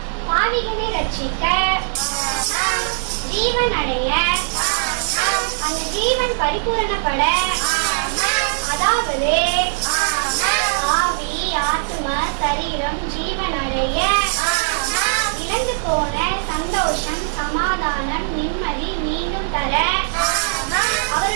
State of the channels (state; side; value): silent; left; 63 dB below the other